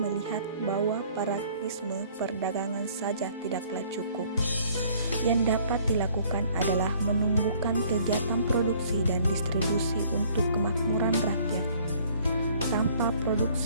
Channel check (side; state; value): both; inverted; correlation -0.57